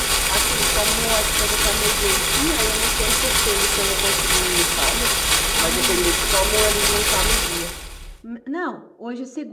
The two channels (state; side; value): identical; both; correlation 1.00